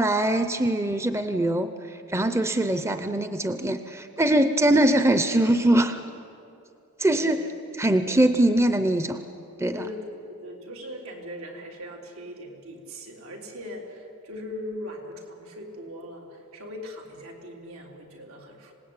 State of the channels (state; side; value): normal; both; correlation 0.74